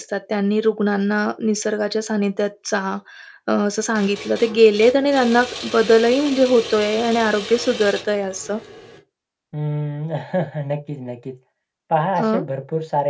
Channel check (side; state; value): both; identical; correlation 1.00